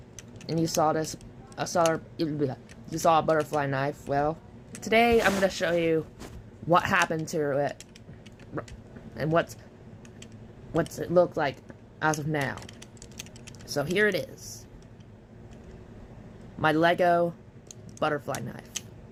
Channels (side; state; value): both; identical; correlation 1.00